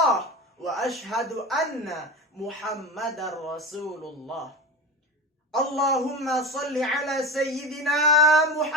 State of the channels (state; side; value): normal; both; correlation 0.26